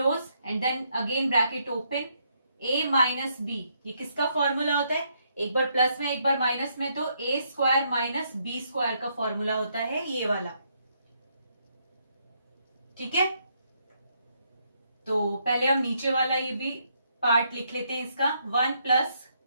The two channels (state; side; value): inverted; both; correlation -0.74